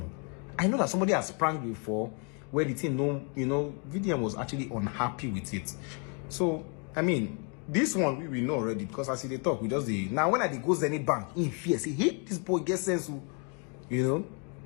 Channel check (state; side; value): quieter; right; 36.9 dB